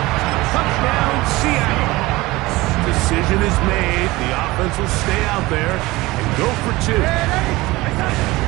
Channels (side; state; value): left; quieter; 20.2 dB